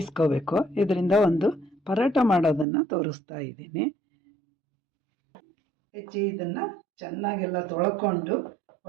ಇದರಿಂದ ಒಂದು ಪರೋಟ ಮಾಡೋದನ್ನು ತೋರಿಸ್ತಾ ಇದ್ದೀನಿ. ಹೆಚ್ಚಿ ಇದನ್ನು ಚೆನ್ನಾಗೆಲ್ಲ ತೊಳ್ಕೊಂಡು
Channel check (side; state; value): left; drops out; at 2.7 s